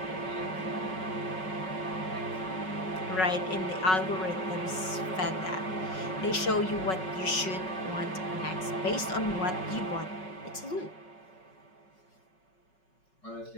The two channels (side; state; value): right; late; 5.4 ms